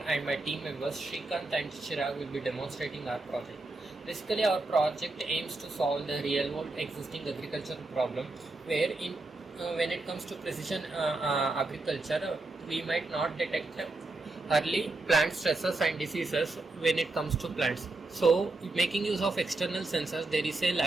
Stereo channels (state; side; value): quieter; left; 3.1 dB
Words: and my team members Shrikanth and Chirag will be demonstrating our project. Basically, our project aims to solve the real world existing agricultural problem where when it comes to precision agriculture, we might not detect early plant stresses and diseases when it comes to plants. So making use of external sensors, there is a